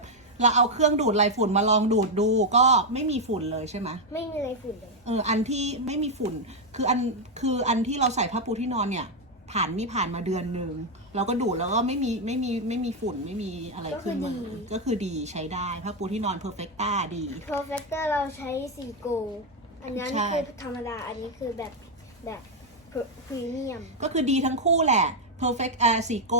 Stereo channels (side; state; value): both; normal; correlation 0.01